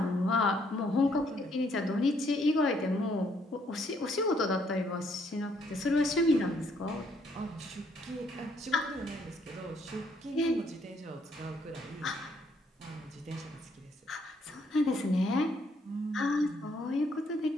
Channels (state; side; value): normal; both; correlation 0.69